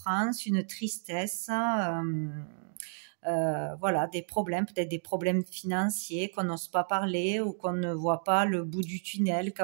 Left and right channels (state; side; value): silent; left; digital silence